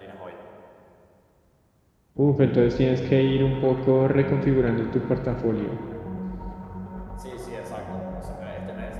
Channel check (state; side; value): identical; both; correlation 1.00